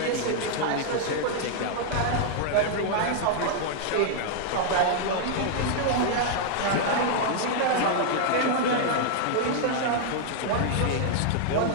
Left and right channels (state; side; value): different; both; correlation -0.01